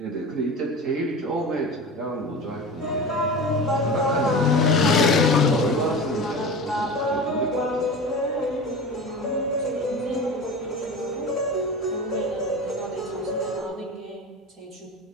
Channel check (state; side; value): normal; both; correlation 0.31